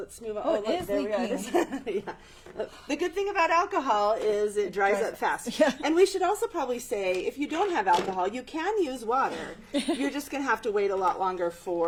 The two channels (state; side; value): identical; both; correlation 1.00